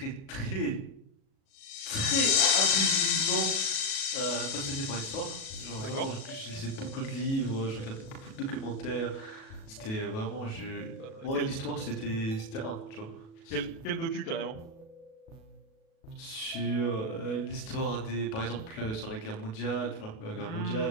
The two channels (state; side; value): late; right; 37 ms